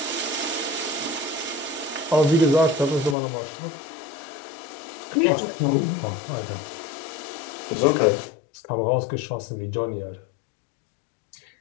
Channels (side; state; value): right; drops out; at 3.2 s